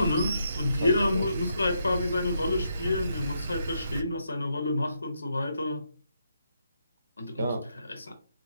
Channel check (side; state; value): both; inverted; correlation -0.79